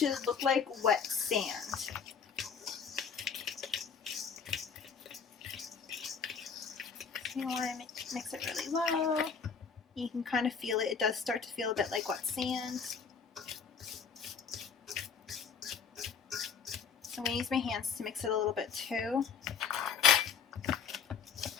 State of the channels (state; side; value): quieter; right; 6.4 dB